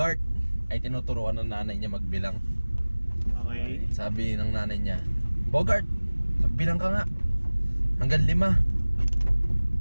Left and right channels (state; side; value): inverted; both; correlation -1.00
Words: ay tinuturuan ng nanay niya magbilang. Okay. Sabi ng nanay niya, Bogart, magbilang ka nga. Hanggang 5.